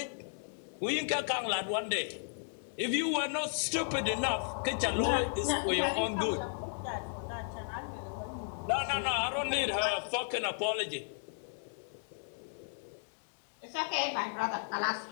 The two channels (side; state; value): right; silent; digital silence